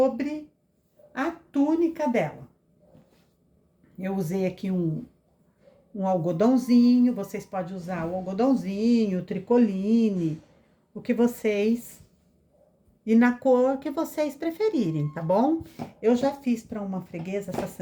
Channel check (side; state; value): both; identical; correlation 1.00